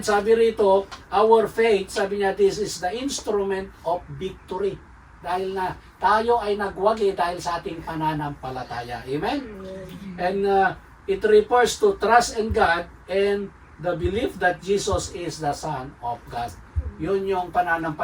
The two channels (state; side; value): identical; both; correlation 1.00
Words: sabi rito, our faith, sabi niya, this is the instrument of victory. Dahil na tayo ay nagwagi dahil sa ating pananampalataya. Amen? And it refers to trust in God and the belief that Jesus is the Son of God. Yun yung